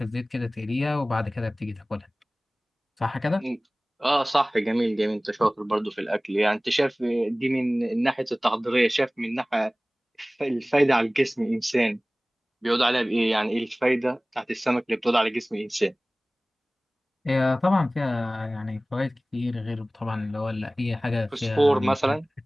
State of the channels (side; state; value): both; normal; correlation 0.98